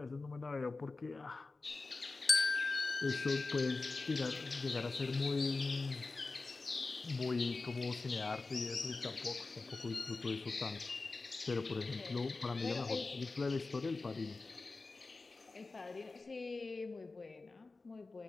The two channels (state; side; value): quieter; right; 3.7 dB